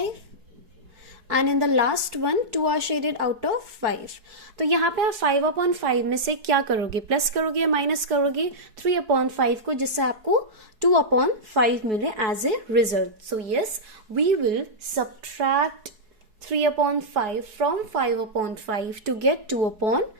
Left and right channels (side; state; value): left; late; 4.7 ms